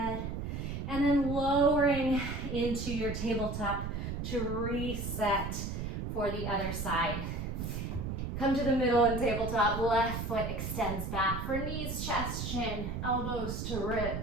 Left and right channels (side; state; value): right; noise; rumble, 4 dB below the sound